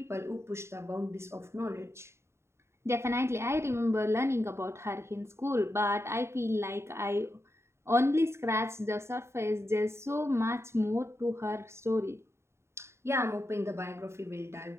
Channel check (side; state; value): left; late; 0.13 ms